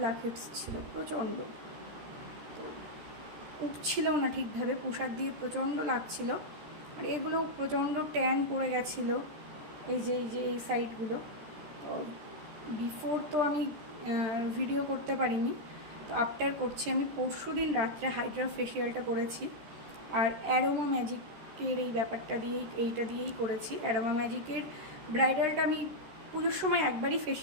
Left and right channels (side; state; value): left; late; 13 ms